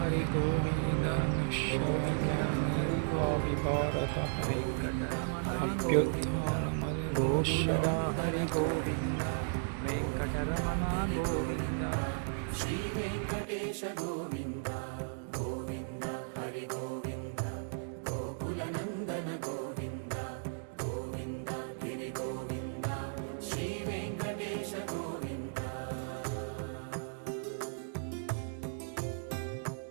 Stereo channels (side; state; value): left; silent; digital silence